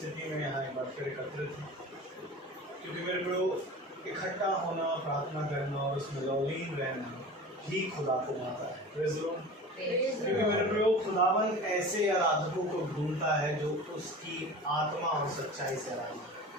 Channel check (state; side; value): normal; both; correlation 0.36